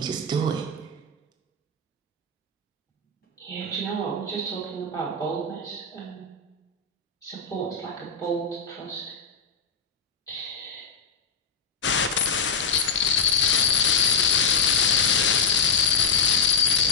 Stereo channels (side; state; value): right; quieter; 5.0 dB